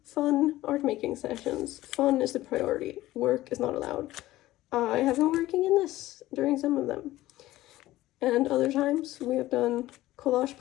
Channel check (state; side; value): quieter; right; 16.2 dB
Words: fun art making sessions. Fun is the priority. Work is not allowed. I have been working in this during some of them. And other times we have done collage